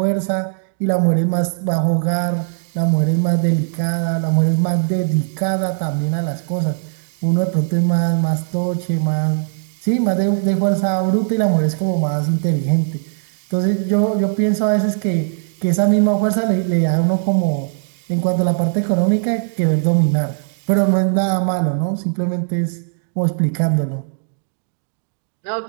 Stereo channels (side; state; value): left; silent; digital silence